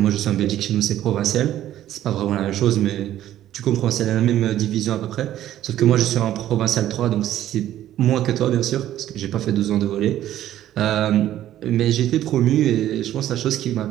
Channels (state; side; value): quieter; left; 12.5 dB